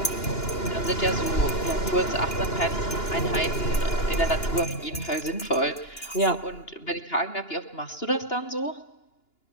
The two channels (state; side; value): late; right; 2.9 ms